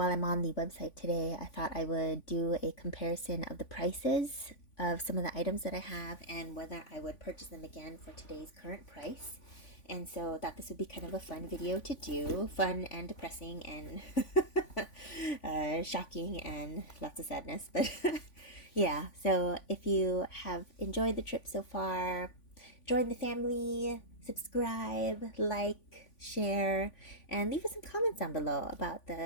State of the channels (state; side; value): late; right; 3.5 ms